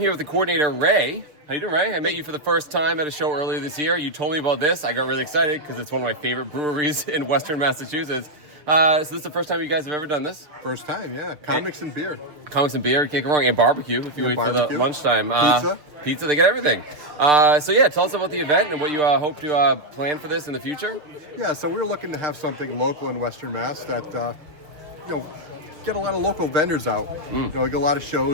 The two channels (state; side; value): late; left; 6.7 ms